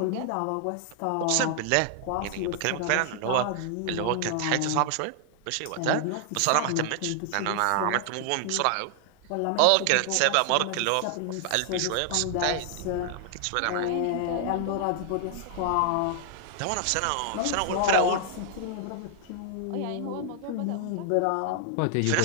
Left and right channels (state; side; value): different; both; correlation 0.00